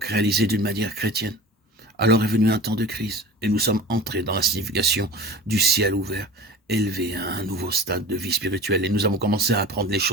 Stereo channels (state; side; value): normal; both; correlation 0.37